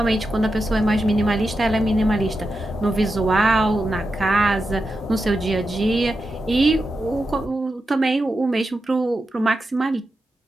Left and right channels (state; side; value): normal; both; correlation 0.89